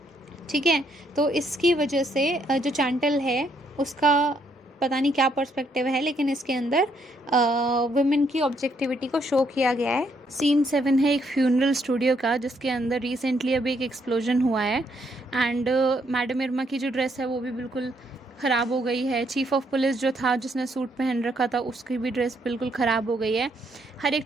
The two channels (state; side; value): normal; both; correlation 0.72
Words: ठीक है, तो इसकी वजह से जो चैंटल है उसका पता नहीं क्या पर्सपेक्टिव है, लेकिन इसके अंदर वुमेन की ऑब्जेक्टिविटी को शो किया गया है। सीन 7 है एक फ्यूनरल स्टूडियो का, जिसके अंदर रिसेंटली अभी एक एक्सप्लोजन हुआ है एंड मैडम इरमा की जो ड्रेस है वो भी बिल्कुल ख़राब हो गई है। चीफ ऑफ पुलिस जो था जिसने सूट पहन रखा था उसकी भी ड्रेस बिल्कुल ख़राब हो गई है। हर एक